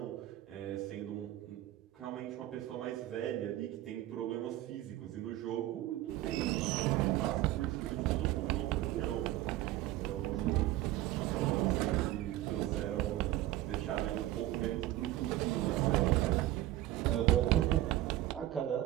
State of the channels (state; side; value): quieter; left; 15.1 dB